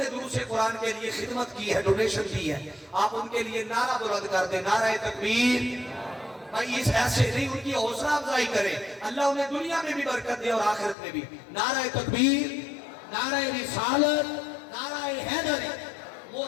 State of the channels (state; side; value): drops out; right; at 11.0 s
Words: دروس قرآن کے لیے خدمت کی ہے, ڈونیشن کی ہے, آپ ان کے لیے نعرہ بلند کر دیں, نعرہ تکبیر, بھائی اس ایسے نہیں، ان کی حوصلہ افزائی کریں، اللہ انہیں دنیا میں بھی برکت دے اور آخرت میں بھی۔ نعرہ تکبیر، نعرہ رسالت، نعرہ حیدری۔